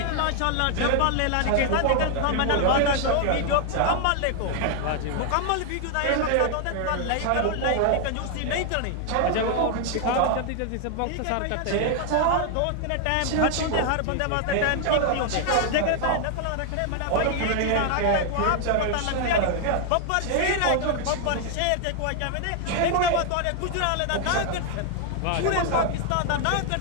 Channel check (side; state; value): both; different; correlation 0.00